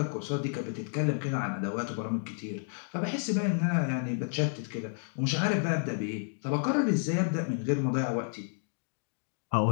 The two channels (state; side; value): silent; right; 57 dB below the other